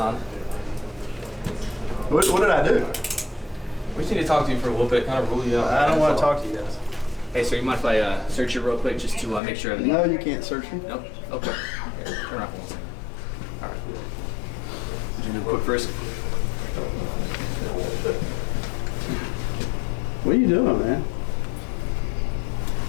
What did I do? We just need to talk to you for a little bit, kind of rule you out. I don't want to talk to you guys. Hey, sir, you mind if I search you real quick just to make sure everything... No, you can't search me. Nope? Okay. Okay. Turn around for 1 second. All right. Did you do a quick frisk? What are you doing, man?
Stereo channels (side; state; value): right; drops out; at 9.4 s